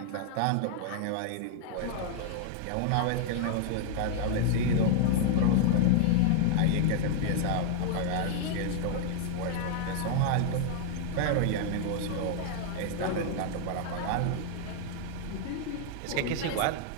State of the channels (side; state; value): both; different; correlation 0.00